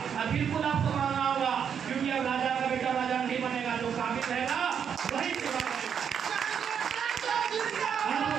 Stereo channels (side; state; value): left; quieter; 7.7 dB